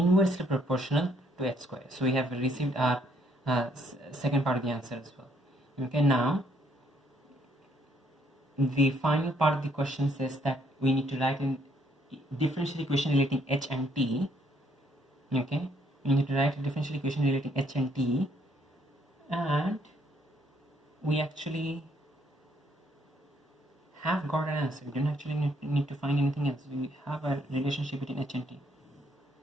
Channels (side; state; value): both; normal; correlation 0.68